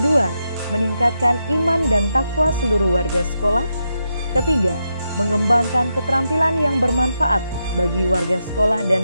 meningkatkan iman dan takwa seluruh warga sekolah. Ketiga, mengembangkan keterampilan yang bermanfaat bagi warga sekolah dan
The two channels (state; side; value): inverted; both; correlation -0.84